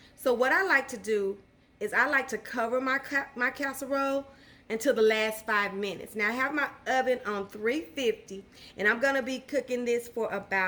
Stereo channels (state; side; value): identical; both; correlation 1.00